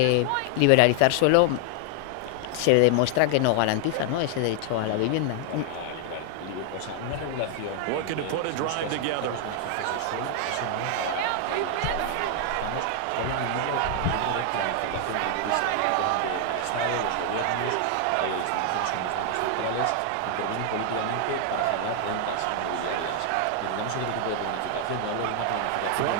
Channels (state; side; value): different; both; correlation 0.00